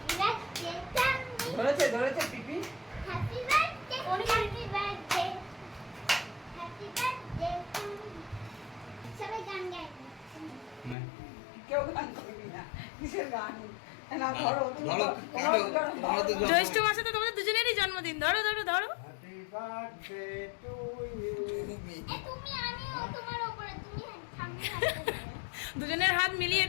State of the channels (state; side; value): drops out; right; at 11.0 s